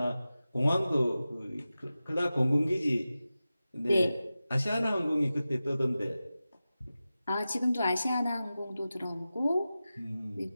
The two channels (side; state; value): both; inverted; correlation -0.94